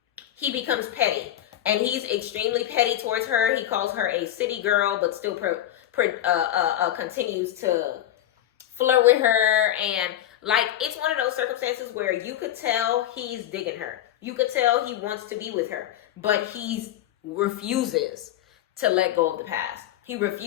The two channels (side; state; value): right; quieter; 12.3 dB